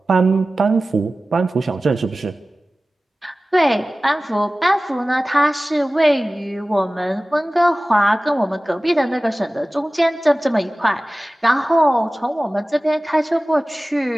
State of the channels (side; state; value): both; normal; correlation 0.97